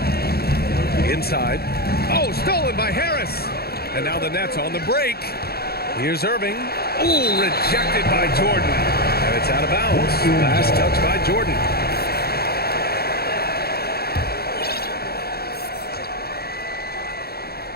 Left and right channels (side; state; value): right; late; 0.46 ms